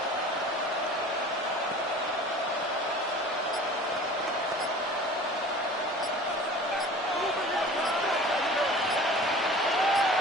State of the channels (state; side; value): normal; both; correlation 0.43